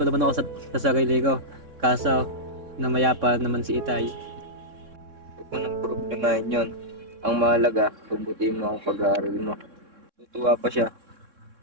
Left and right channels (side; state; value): left; late; 3.6 ms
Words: pa naman ako sa sarili ko. Kaso, namayapa naman si Itay. Huwag mo nang problemahin yun. Ang mahalaga, pagbutihin mo ang pag-aaral mo. Tutuwa pa siya.